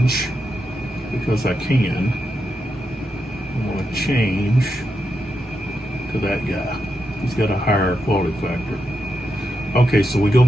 because I can, I want to change to that guy. He's got a higher quality factor. Okay, so we go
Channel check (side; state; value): both; normal; correlation 0.85